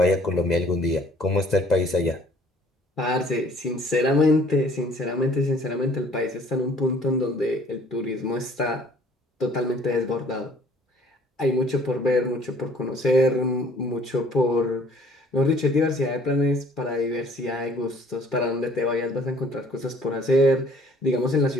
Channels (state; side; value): normal; both; correlation 0.57